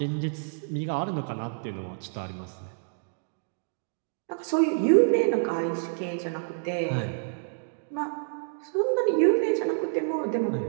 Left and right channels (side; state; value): left; silent; digital silence